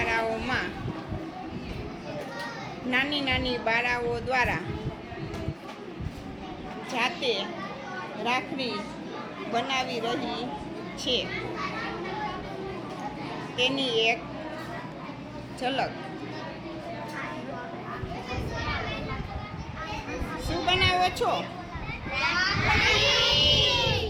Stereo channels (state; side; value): identical; both; correlation 1.00